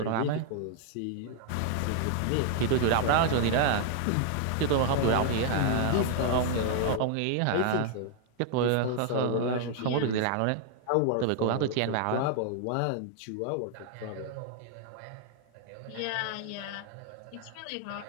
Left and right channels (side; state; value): both; different; correlation 0.00